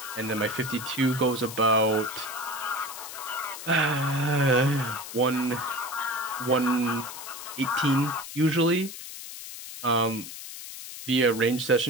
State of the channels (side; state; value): left; noise; hiss, 11 dB below the sound